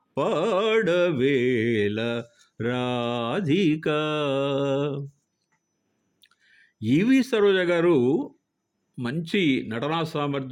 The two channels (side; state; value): both; identical; correlation 1.00